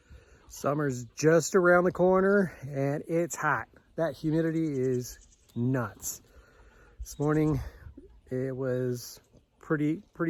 Summer's just around the corner and it's hot. That humidity is nuts. This morning it was pretty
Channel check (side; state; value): both; identical; correlation 1.00